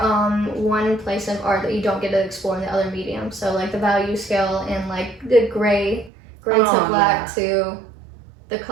one place of art that you don't get to explore in the other medium. So like the value scale and like the gray to black to the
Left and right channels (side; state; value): left; drops out; at 6.1 s